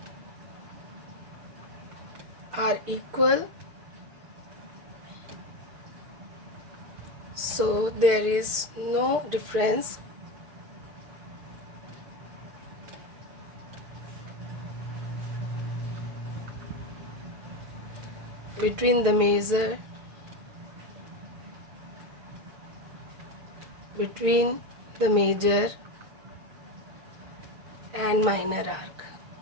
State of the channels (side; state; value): left; late; 6.6 ms